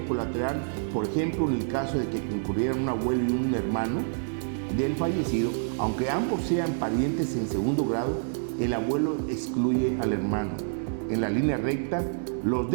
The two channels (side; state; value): left; silent; digital silence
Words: colateral, por ejemplo, en el caso de que concurrieran un abuelo y un hermano del fallecido, aunque ambos sean parientes en segundo grado, el abuelo excluye al hermano. En la línea recta, los